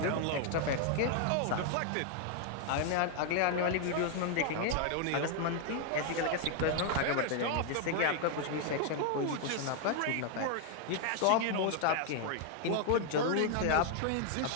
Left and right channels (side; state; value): both; different; correlation 0.00